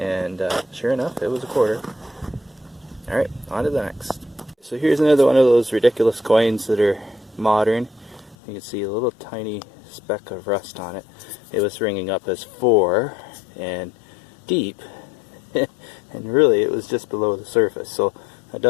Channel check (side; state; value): right; drops out; at 8.3 s